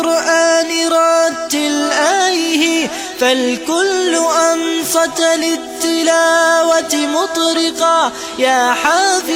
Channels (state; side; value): identical; both; correlation 1.00